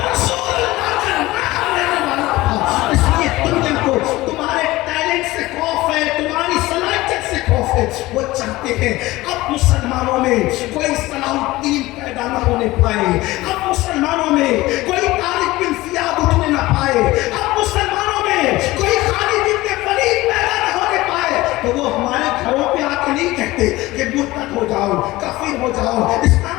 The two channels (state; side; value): quieter; right; 18.8 dB